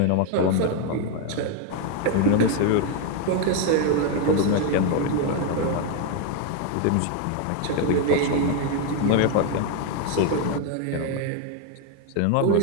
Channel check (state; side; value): different; both; correlation 0.01